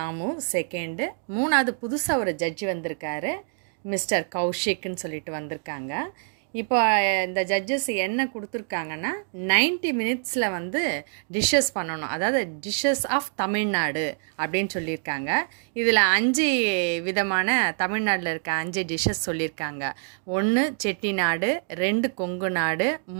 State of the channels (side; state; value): left; silent; 61 dB below the other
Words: செகண்டு, மூணாவது புதுசாக ஒரு ஜட்ஜி வந்திருக்காரு, மிஸ்டர் கௌஷிக்னு சொல்லிட்டு வந்திருக்காங்க. இப்போ இந்த ஜட்ஜஸ் என்ன கொடுத்துருக்காங்கன்னா 90 மினிட்ஸில் வந்து டிஷ்ஷஸ் பண்ணணும், அதாவது டிஷ்ஷஸ் ஆஃப் தமிழ்நாடு அப்படின்னு சொல்லியிருக்காங்க. இதில் 5 விதமான தமிழ்நாட்டில் இருக்க 5 டிஷ்ஷஸ் சொல்லியிருக்காங்க. 1 செட்டிநாடு, 2 கொங்கு நாடு,